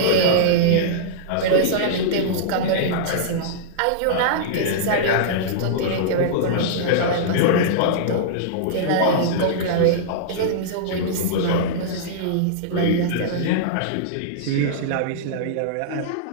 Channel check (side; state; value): both; different; correlation -0.02